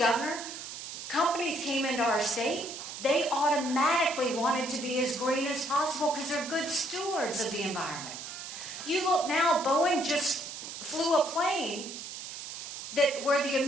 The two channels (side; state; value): right; noise; hiss, 9 dB below the sound